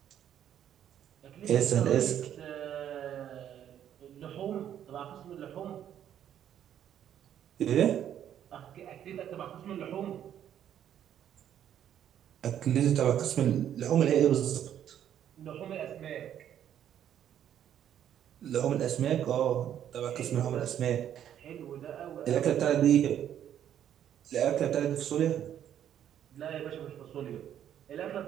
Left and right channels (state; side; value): quieter; left; 10.2 dB